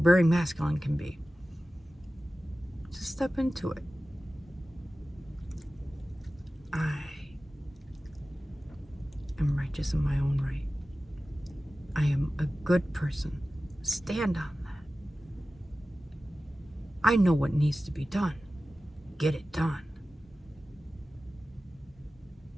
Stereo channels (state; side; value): normal; both; correlation 0.95